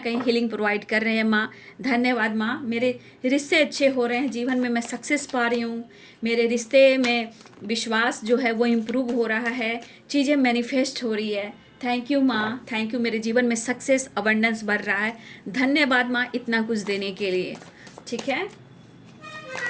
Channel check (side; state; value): both; identical; correlation 1.00